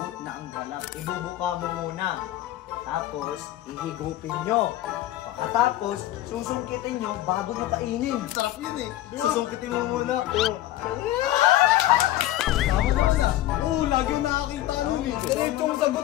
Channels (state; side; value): quieter; right; 14.5 dB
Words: na ang galak. Ibubuka mo muna. Tapos, ihigupin nyo. Pagkatapos, susungkitin nyo bago nyo kainin. Sarap yun eh. Susungkitin mo muna. Tama naman ah. Oo, lagi yung nakakita nun eh. Diretsong